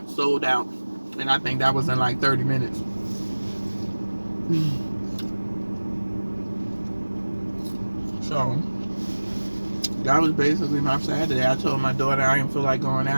sold out. And I think that was in like 30 minutes. So that was basically my Saturday. I told my daughter I didn't feel like going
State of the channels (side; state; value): both; inverted; correlation -1.00